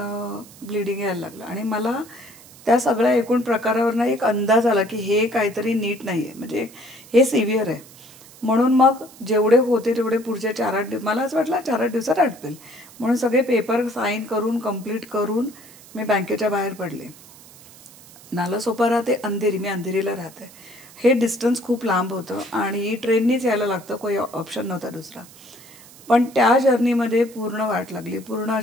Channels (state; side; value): noise; right; hiss, 21 dB below the sound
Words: ब्लिडिंग यायला लागलं आणि मला त्या सगळ्या एकूण प्रकारावरनं एक अंदाज आला की हे काहीतरी नीट नाही आहे, म्हणजे हे सिव्हिअर आहे. म्हणून मग जेवढे होते तेवढे पुढचे 4-8 दिवस, मला असं वाटलं 4-8 दिवसात आटपेल म्हणून सगळे पेपर साईन करून कंप्लीट करून मी बँकेच्या बाहेर पडले. नालासोपारा ते अंधेरी, मी अंधेरीला राहते. हे डिस्टन्स खूप लांब होतं आणि ट्रेननीच यायला लागतं, काही ऑप्शन नव्हता दुसरा. पण त्या जर्नीमध्ये पूर्ण वाट लागली. पूर्ण